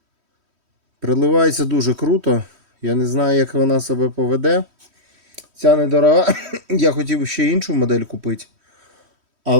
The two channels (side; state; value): left; late; 3.1 ms